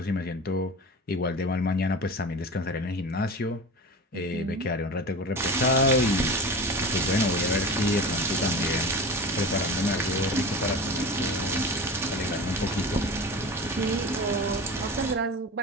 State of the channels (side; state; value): both; normal; correlation 0.31